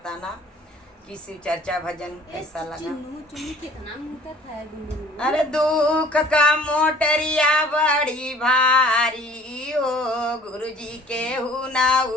कि शिव चर्चा भजन कैसा लगा। अरे दुख का मोटरिया बड़ी भारी हो, गुरुजी के हुना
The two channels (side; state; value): both; normal; correlation 0.51